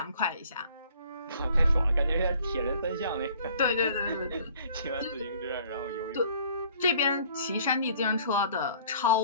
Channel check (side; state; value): both; inverted; correlation -0.55